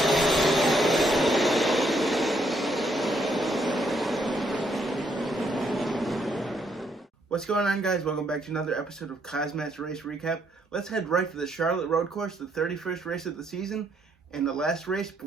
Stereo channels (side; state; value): both; normal; correlation 0.72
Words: What's going on, guys? Welcome back to another episode of KozMatt's Race Recap. Let's head right to the Charlotte Road Course, the 31st race of the season, and the last race